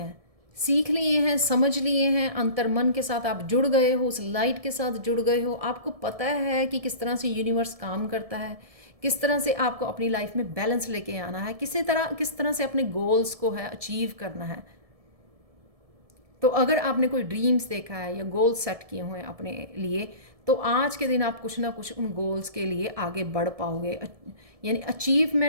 समझ लिए हैं, अंतर्मन के साथ आप जुड़ गए हो, उस लाइट के साथ जुड़ गए हो। आपको पता है कि किस तरह से यूनिवर्स काम करता है, किस तरह से आपको अपनी लाइफ में बैलेंस लेके आना है, किस तरह से अपने गोल्स को है अचीव करना है। तो अगर आपने कोई ड्रीम्स देखा है या गोल्स सेट किए हुए हैं अपने लिए, तो आज के दिन आप कुछ ना कुछ उन गोल्स के लिए आगे बढ़ पाओगे। यानी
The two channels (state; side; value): late; left; 1.7 ms